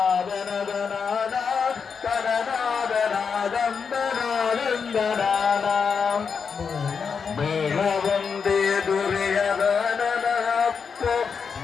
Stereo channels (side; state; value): right; quieter; 6.0 dB